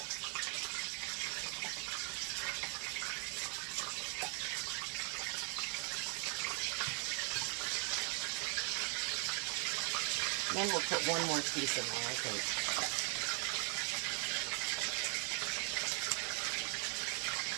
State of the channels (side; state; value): left; quieter; 35.8 dB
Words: Then we'll put one more piece in there, I think.